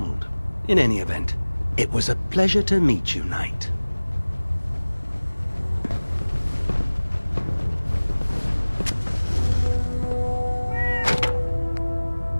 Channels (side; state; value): both; inverted; correlation -1.00